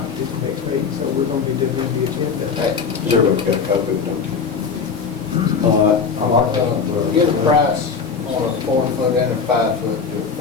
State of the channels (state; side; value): quieter; right; 5.6 dB